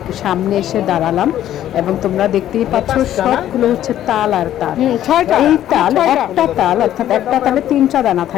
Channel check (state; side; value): quieter; right; 12.0 dB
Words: সামনে এসে দাঁড়ালাম এবং তোমরা দেখতেই পাচ্ছ সবগুলো হচ্ছে তাল আর তাল। এই তাল, একটা তাল অর্থাৎ একটা তালে 3টা দানা